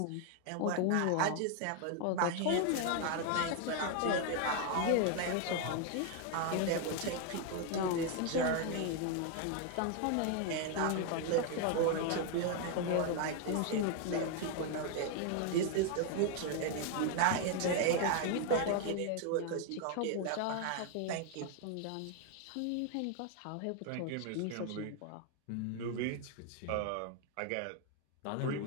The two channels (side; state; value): both; different; correlation 0.01